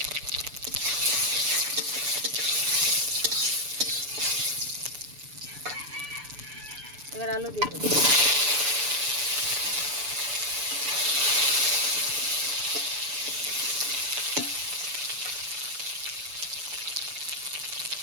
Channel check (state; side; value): late; left; 6.9 ms